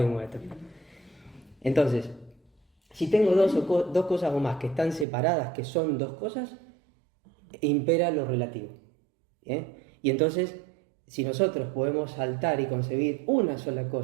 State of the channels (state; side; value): drops out; left; at 5.1 s